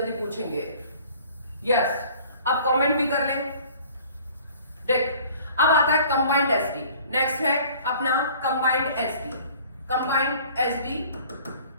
पूछेंगे। यस, अब कमेंट भी कर लें। देख अब आता है कंबाइंड एसडी, नेक्स्ट है अपना combined SD. Combined SD,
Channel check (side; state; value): both; inverted; correlation -0.50